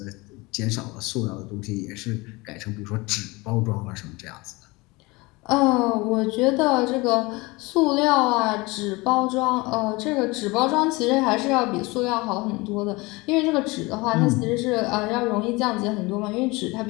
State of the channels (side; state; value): right; quieter; 23.8 dB